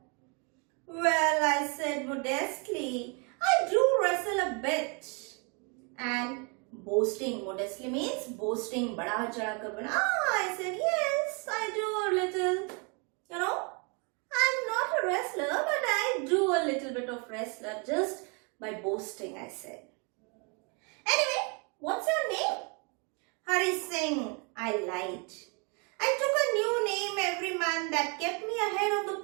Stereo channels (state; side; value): quieter; left; 34.0 dB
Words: Well, I said modestly, I do wrestle a bit. And boasting, modestly means boasting, bada chada kar bana. I said, yes, I do a little. You know, I'm not a wrestler, but I do a little bit of wrestler just by boasting, I said. Anyway, what's your name? Hari Singh, I lied. I took a new name every month that kept me ahead of the